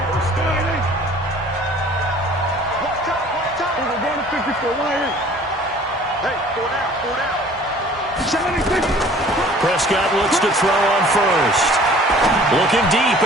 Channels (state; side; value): normal; both; correlation 0.50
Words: Prescott looks to throw on first. Looking deep